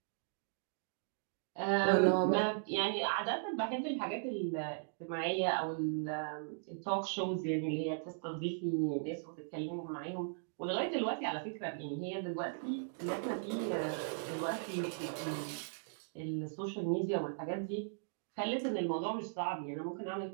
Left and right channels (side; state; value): left; silent; digital silence